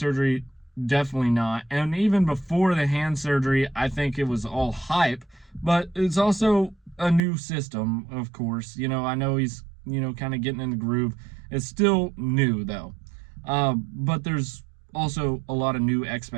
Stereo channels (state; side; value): drops out; left; at 7.2 s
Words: definitely not. And even before the hand surgery, I think it was all hype, but it's also a new system, of course. I know he's, kind of getting in the groove. It's still new, though. But there's also a lot of new